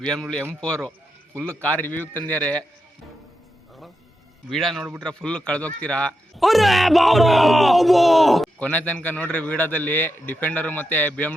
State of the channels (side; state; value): both; normal; correlation 0.86